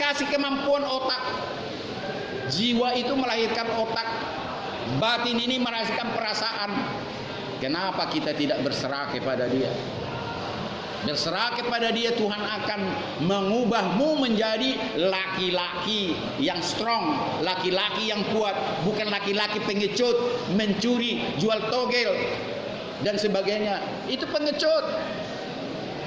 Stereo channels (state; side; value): identical; both; correlation 1.00